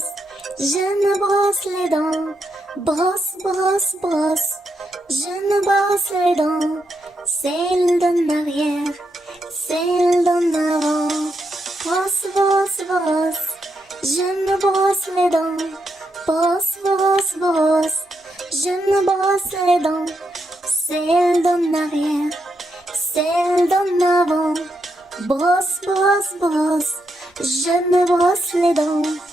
je me brosse les dents. Brosse, brosse, brosse, je me brosse les dents. Celle d'en arrière, celle d'en avant. Brosse, brosse, brosse, je me brosse les dents. Brosse, brosse, brosse, je me brosse les dents. Celle d'en arrière, celle d'en avant. Brosse, brosse, brosse, je me brosse les dents.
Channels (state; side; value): normal; both; correlation 0.82